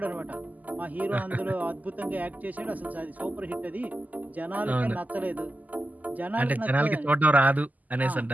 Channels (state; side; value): late; left; 0.080 ms